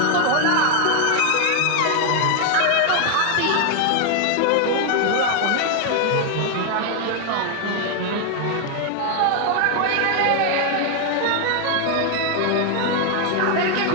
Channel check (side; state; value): both; different; correlation 0.01